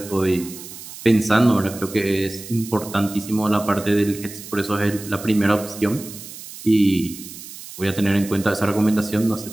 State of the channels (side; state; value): right; noise; hiss, 14 dB below the sound